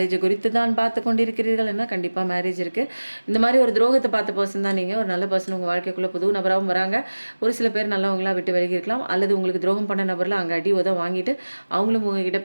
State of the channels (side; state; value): both; inverted; correlation -1.00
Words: குறித்து தான் பார்த்து கொண்டிருக்கிறீர்கள் என்ன, கண்டிப்பாக மேரேஜ் இருக்குது. இந்த மாதிரி ஒரு துரோகத்தை பார்த்த பர்சன் தான் நீங்கள். ஒரு நல்ல பர்சன் உங்கள் வாழ்க்கைக்குள்ளே புது நபராகவும் வராங்க. ஒரு சில பேர் நல்லவங்களாக விட்டு விலகி இருக்கலாம், அல்லது உங்களுக்கு துரோகம் பண்ண நபரில் அங்கே அடி உதவ வாங்கிட்டு அவங்களும் உங்ககிட்ட